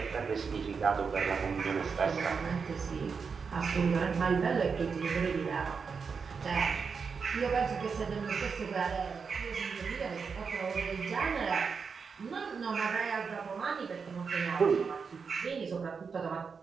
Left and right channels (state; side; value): quieter; left; 5.5 dB